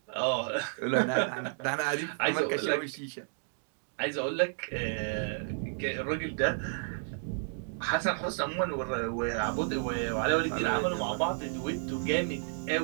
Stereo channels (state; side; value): silent; left; digital silence